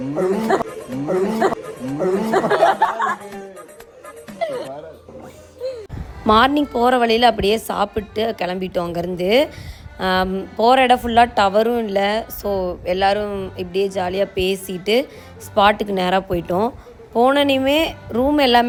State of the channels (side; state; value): both; identical; correlation 1.00